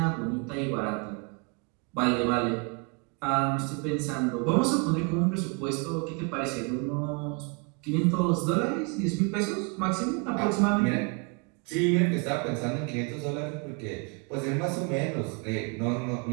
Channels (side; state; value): left; quieter; 33.4 dB